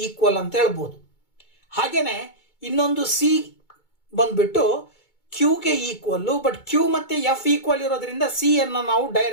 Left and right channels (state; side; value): late; right; 2.2 ms